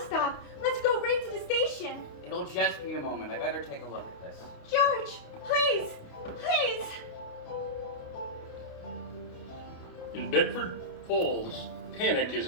Let's go right to the station. It'll just be a moment. I better take a look at this. George, please, please. In Bedford Falls, panic is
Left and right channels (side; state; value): right; late; 29 ms